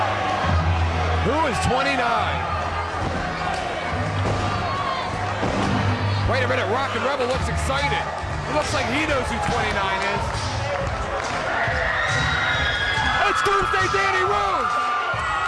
Who is 29? Wait a minute, Rockin' Rebel looks excited. He looks like he knows who 29 is. It's Doomsday Danny Rose!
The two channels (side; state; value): both; identical; correlation 1.00